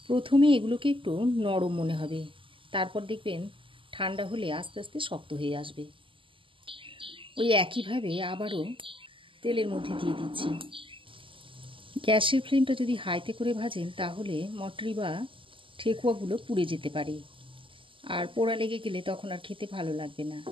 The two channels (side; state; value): left; late; 0.25 ms